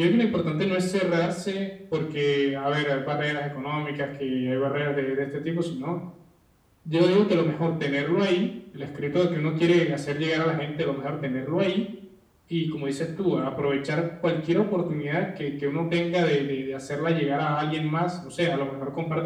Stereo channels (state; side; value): identical; both; correlation 1.00